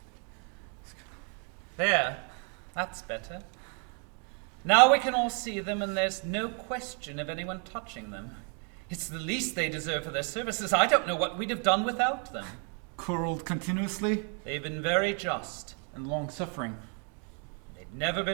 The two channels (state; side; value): quieter; left; 39.8 dB